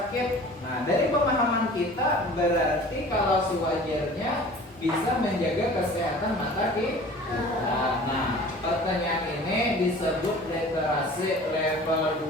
Nah, dari pemahaman kita berarti kalau sewajarnya bisa menjaga kesehatan mata kita. Nah, pertanyaan ini disebut literasi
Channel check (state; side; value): normal; both; correlation 0.44